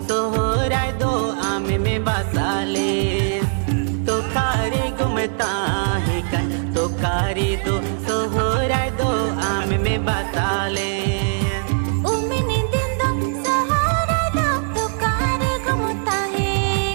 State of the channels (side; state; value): left; silent; digital silence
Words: sohora do ame me basale to kare gomtahe kan to kari do sohorai do ame me basale umini dindo sohorai do to kare gumtahe